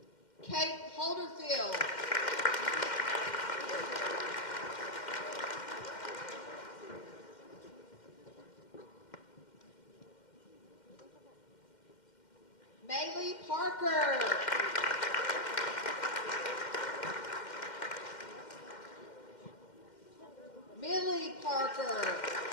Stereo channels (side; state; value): right; late; 2.1 ms